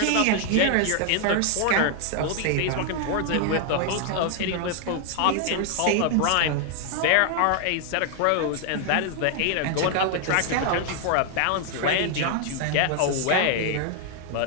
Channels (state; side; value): different; both; correlation 0.00